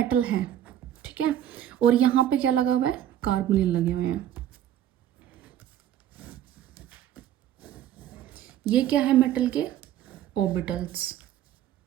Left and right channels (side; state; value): left; quieter; 11.3 dB